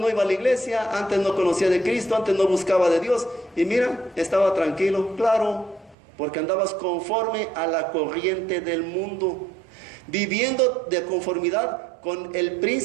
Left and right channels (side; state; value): left; drops out; at 6.0 s